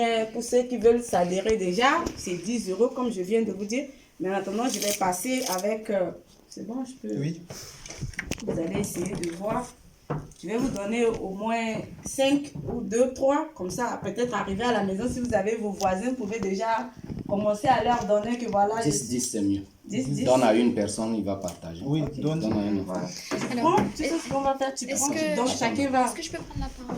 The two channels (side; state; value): both; identical; correlation 1.00